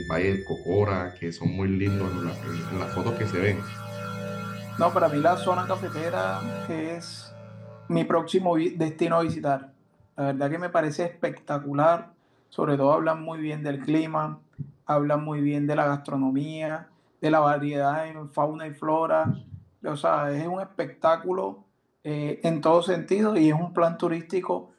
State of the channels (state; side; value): identical; both; correlation 1.00